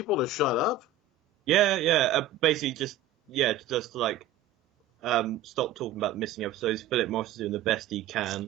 to shut up? Yeah. Basically, just to like stop talking about the missing episodes. Philip Morris is doing the best he can.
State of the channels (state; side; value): quieter; left; 6.9 dB